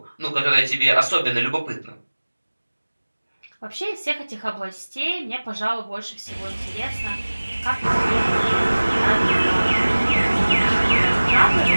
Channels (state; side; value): inverted; both; correlation -1.00